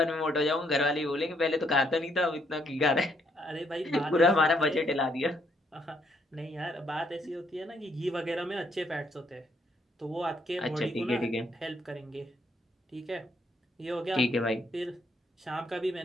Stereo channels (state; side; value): normal; both; correlation 0.71